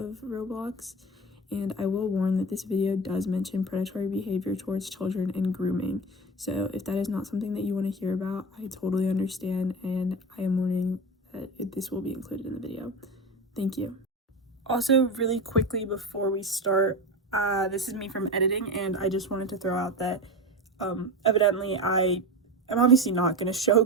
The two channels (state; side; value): normal; both; correlation 0.24